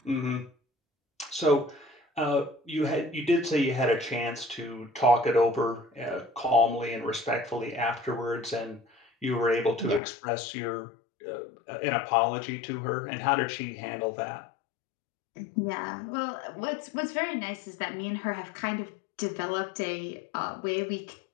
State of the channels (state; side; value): drops out; right; at 10.0 s